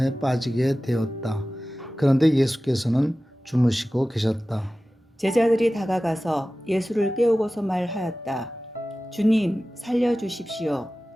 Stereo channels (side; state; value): both; normal; correlation 0.96